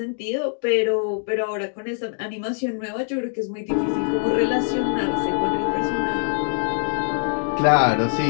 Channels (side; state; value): right; silent; digital silence